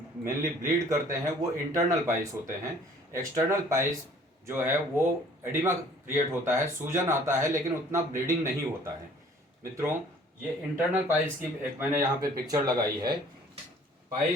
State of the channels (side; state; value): both; normal; correlation 0.54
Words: ब्लीड करते हैं, वो इंटरनल पाइल्स होते हैं। एक्सटर्नल पाइल्स जो है वो एडिमा क्रिएट होता है, सूजन आता है, लेकिन उतना ब्लीडिंग नहीं होता है। मित्रों, ये इंटरनल पाइल्स की एक मैंने यहाँ पे पिक्चर लगाई है।